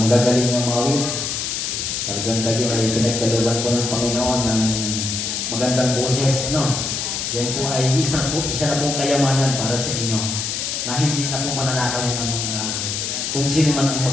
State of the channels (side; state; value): left; noise; hiss, 2 dB below the sound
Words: na mawid. Talagang kayo ay pinagkalooban po ng Panginoon ng magandang boses. No? Yan po ay isa na pong kayamanan para sa inyo na hindi na po mananakawin ng mga kung sino man ang